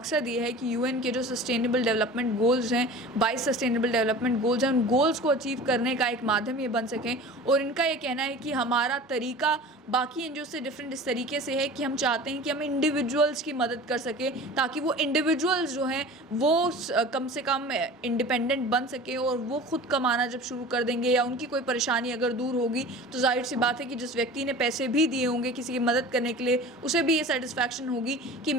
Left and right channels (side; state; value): both; normal; correlation 0.39